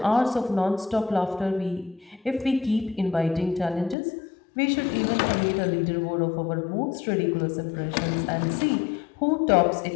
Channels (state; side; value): drops out; right; at 4.0 s